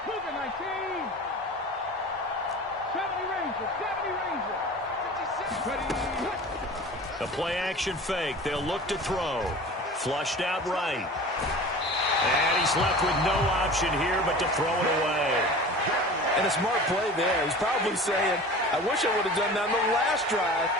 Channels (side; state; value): both; normal; correlation 0.38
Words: A play-action fake. They'll look to throw. Flushed out right. And he's left with no option here but to throw it away. And a smart play there. He's probably saying, I wish I would have done that on the last drive